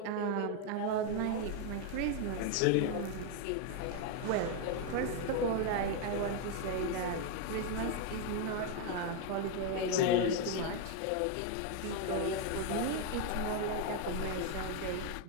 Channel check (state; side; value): different; both; correlation 0.01